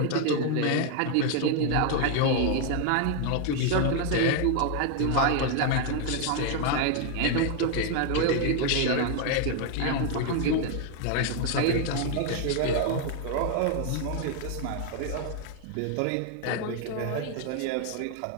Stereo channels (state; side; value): different; both; correlation 0.01